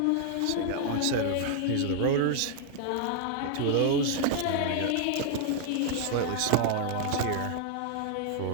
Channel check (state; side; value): different; both; correlation -0.01